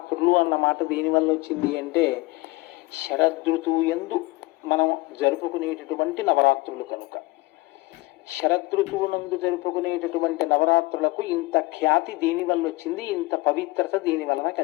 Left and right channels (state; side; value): quieter; right; 21.8 dB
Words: అన్న మాట దేనివల్ల వచ్చింది అంటే శరదృతువు యందు మనం జరుపుకునేటటువంటి నవరాత్రులు కనుక. శరదృతువునందు జరుపుకునేటటువంటి నవరాత్రులకు ఇంత ఖ్యాతి దేనివల్ల వచ్చింది, ఇంత పవిత్రత దేని వలన